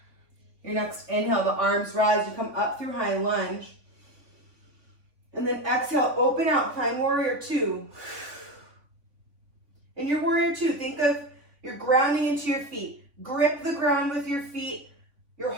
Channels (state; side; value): late; left; 3.5 ms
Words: Your next inhale, the arms rise. You come up through high lunge. And then exhale, open out, find warrior two. In your warrior two, think of you're grounding into your feet. Grip the ground with your feet. Your